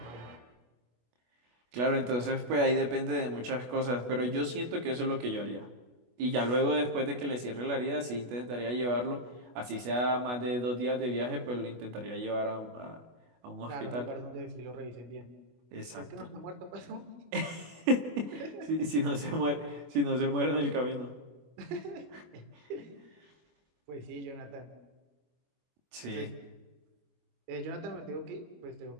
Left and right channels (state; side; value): late; left; 25 ms